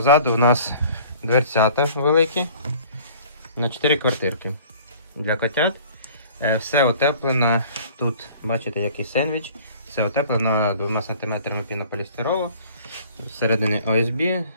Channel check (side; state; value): both; inverted; correlation -0.50